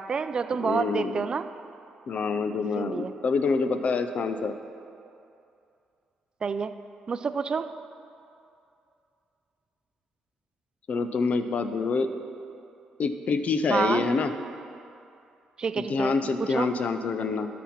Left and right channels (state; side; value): normal; both; correlation 0.77